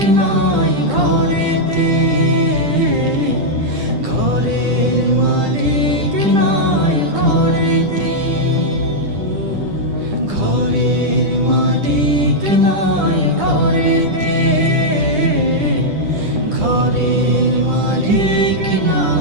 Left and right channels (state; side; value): late; left; 10 ms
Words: নাই ঘরেতে, ঘরের মালিক নাই ঘরেতে, ঘরের মালিক নাই ঘরেতে, ঘরের মালিক